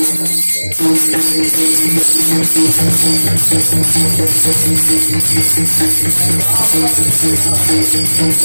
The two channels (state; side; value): inverted; both; correlation -1.00